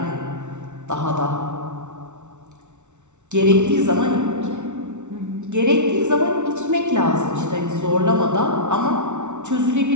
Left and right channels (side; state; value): left; late; 0.83 ms